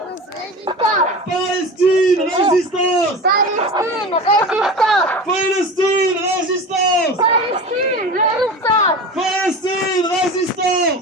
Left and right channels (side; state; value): both; normal; correlation 0.32